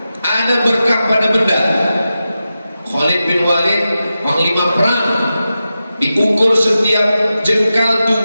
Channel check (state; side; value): inverted; both; correlation -0.91